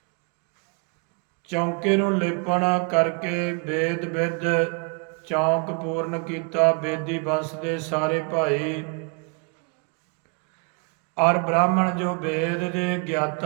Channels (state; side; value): quieter; left; 34.0 dB